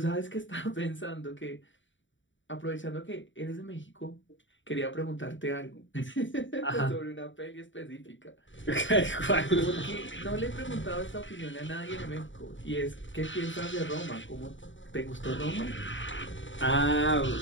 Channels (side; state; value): right; late; 0.55 ms